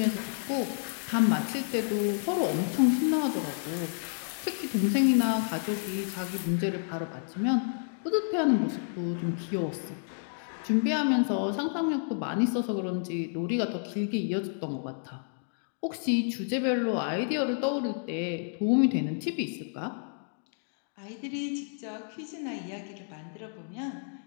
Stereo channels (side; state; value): right; silent; digital silence